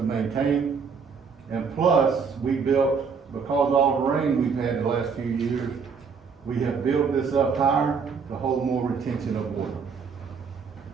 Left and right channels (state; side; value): quieter; left; 5.7 dB